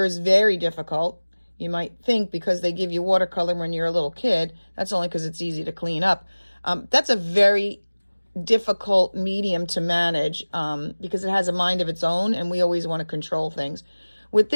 is very difficult. You might think because they give you watercolor when you're a little kid, that's only because it's easy to clean up. That's a very difficult medium to manage because it has a mind of its own and we always want to control things. With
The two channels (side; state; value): both; inverted; correlation -1.00